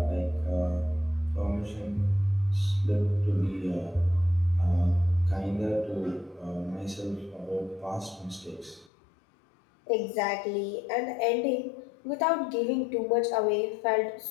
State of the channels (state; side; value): drops out; right; at 8.9 s